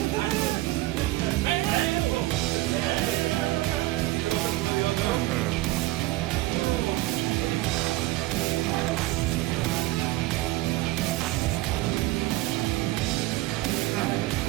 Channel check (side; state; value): left; quieter; 18.4 dB